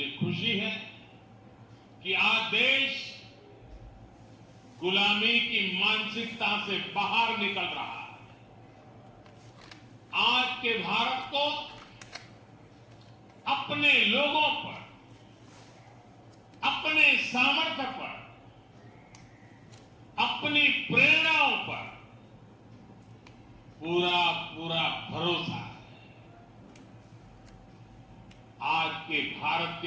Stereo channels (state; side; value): identical; both; correlation 1.00